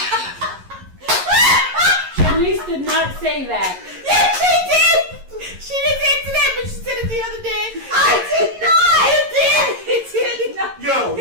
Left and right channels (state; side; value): late; left; 11 ms